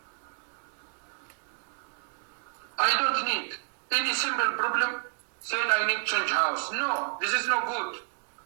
I don't need any simple problem saying I need change house. No, this is not good.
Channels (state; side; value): silent; left; 58 dB below the other